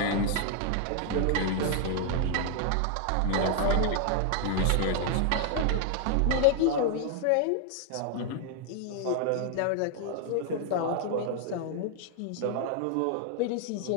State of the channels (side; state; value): both; different; correlation 0.00